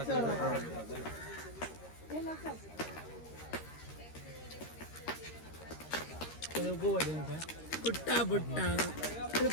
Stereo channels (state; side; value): late; right; 13 ms